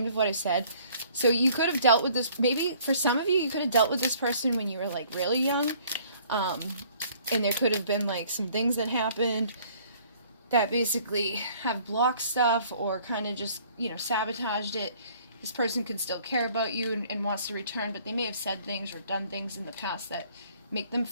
of what I said. So you could have dealt with this, maybe for some of you, you could have dealt with this person when you were like really young. And there could have been like some things that happened that basically have blocked stuff or kind of just, you know, sabotaged it. This person can still care about you and wants to return, but they may have said things or done things in the past that make them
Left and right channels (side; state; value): both; inverted; correlation -0.57